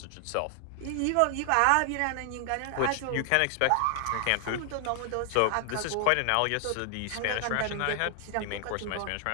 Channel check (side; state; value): both; different; correlation 0.00